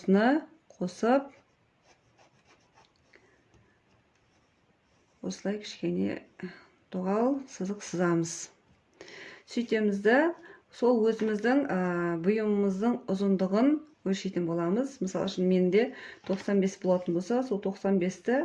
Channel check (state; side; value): identical; both; correlation 1.00